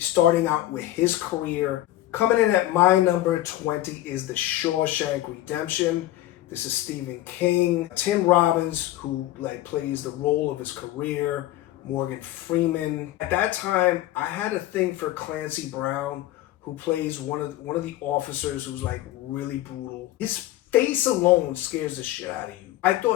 out with his career. Coming in at my number 20 is The Shawshank Redemption. This is Stephen King. Tim Robbins, who like plays the role of his career. Morgan Freeman. At that time, I had a thing for Clancy Brown, who plays one of the officers who's like really brutal. His face alone scares the shit out of you. I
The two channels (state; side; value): quieter; right; 15.3 dB